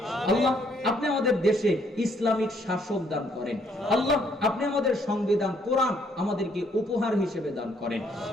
আল্লাহ, আপনি আমাদের দেশে ইসলামিক শাসক দান করেন। আল্লাহ, আপনি আমাদের সংবিধান কোরআন আমাদেরকে উপহার হিসেবে দান করেন।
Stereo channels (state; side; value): normal; both; correlation 0.68